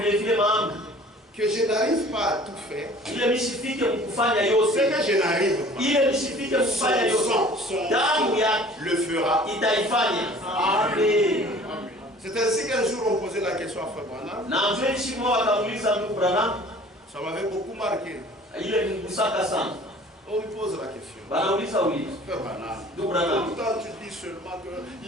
Que je n'arrive pas à tout faire. Ce que je n'arrive pas, son le fera. C'est ainsi qu'un jour on posait la question à Frère Branham. Ça m'avait beaucoup marqué. On lui pose la question. Frère Branham, pourtant tu dis seulement que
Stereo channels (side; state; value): both; normal; correlation 0.48